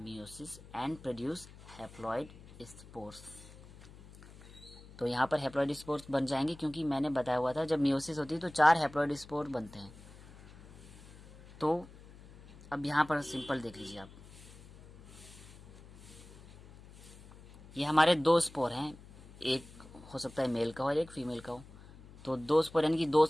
and produce haploid spores. तो यहाँ पर हैप्लॉइड स्पोर्स बन जाएंगे, क्योंकि मैंने बताया हुआ था जब मियोसिस होती है तो 4 हैप्लॉइड स्पोर बनते हैं। तो अब यहाँ पर सिंपल देख लीजिए आप, ये हमारे 2 स्पोर हैं, एक हो सकता है मेल का हो और एक फीमेल का हो। तो 2 स्पोर यानी कि 2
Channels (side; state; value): left; noise; hum, 20 dB below the sound